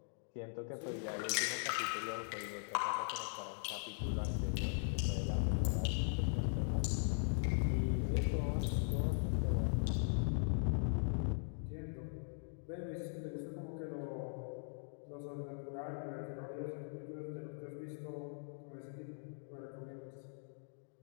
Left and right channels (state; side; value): silent; right; digital silence